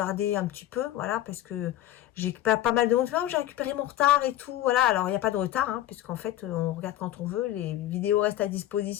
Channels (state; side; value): quieter; right; 13.5 dB